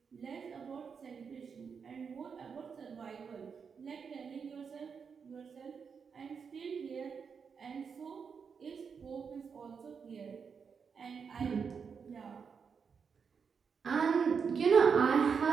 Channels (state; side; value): quieter; left; 6.1 dB